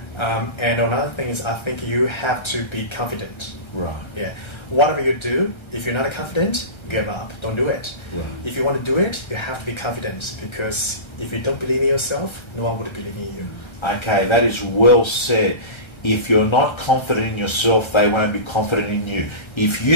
And another thing is, I think you have to be confident. Right. Yeah. Whatever you do, if you're not confident, give up. Don't do it. Right. If you want to do it, you have to be confident, because if you don't believe in yourself, no one would believe in you. Okay, that is well said. If you're not confident in yourself, they won't be confident in you. If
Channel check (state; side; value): late; right; 1.3 ms